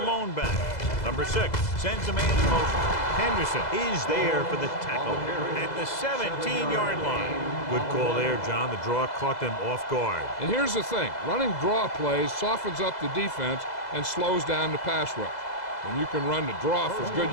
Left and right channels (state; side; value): late; right; 2.0 ms